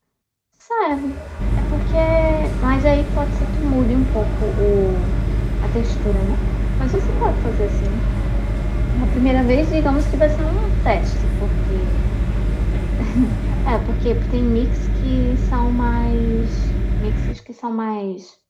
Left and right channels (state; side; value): identical; both; correlation 1.00